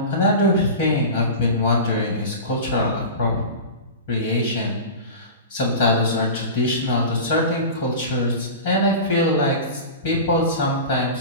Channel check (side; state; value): both; inverted; correlation -0.30